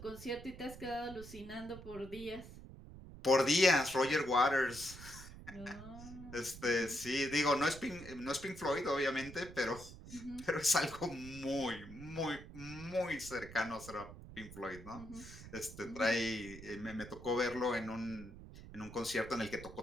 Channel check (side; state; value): right; noise; rumble, 14 dB below the sound